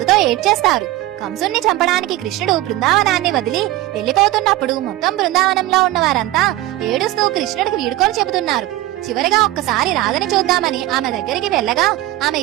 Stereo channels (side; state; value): left; quieter; 16.3 dB